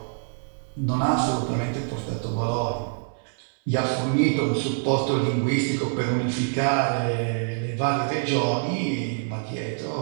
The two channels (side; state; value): left; silent; 61 dB below the other